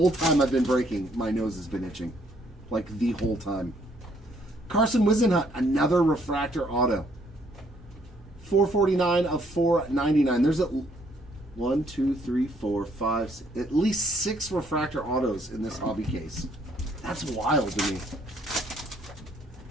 time I've been breaking, my nose has been itching. Like the whole time. Carson Wisenhunt, another Refractor auto. 449 of 499. There's at 1, 2, 3, 4, 5, 6, at least 6 Refractor autos in this hobby case. That's wild to me.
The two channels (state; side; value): normal; both; correlation 0.67